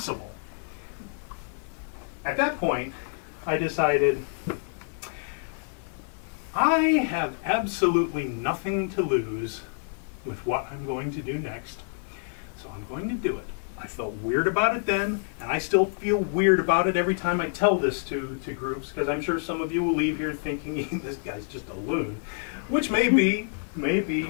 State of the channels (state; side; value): silent; right; digital silence